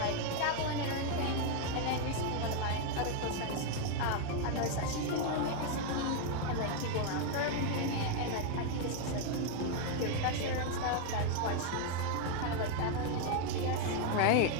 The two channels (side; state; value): both; different; correlation 0.01